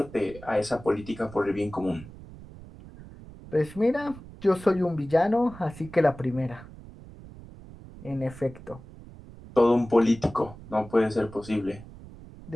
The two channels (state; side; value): noise; right; rumble, 17 dB below the sound